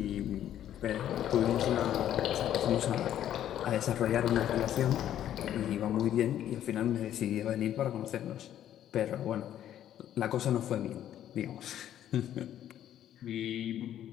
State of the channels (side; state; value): right; quieter; 11.2 dB